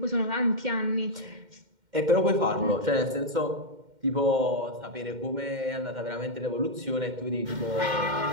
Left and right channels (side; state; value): left; late; 2.1 ms